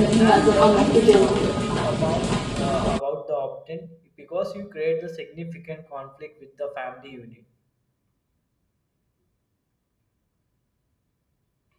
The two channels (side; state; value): both; identical; correlation 1.00